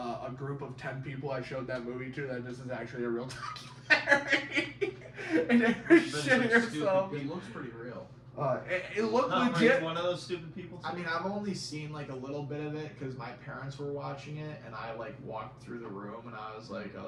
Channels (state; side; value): identical; both; correlation 1.00